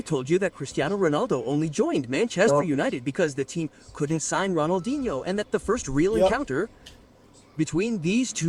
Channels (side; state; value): both; identical; correlation 1.00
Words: told you that Cristiano Ronaldo only joined Manchester United because the team couldn't sign Ronaldinho, and that the first real encounter between these